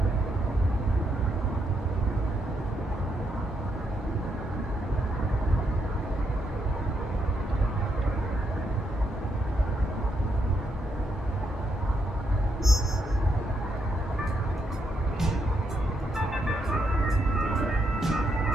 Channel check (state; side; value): normal; both; correlation 0.79